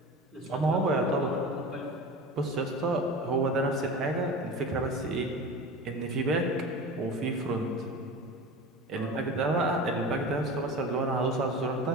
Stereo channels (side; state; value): both; normal; correlation 0.32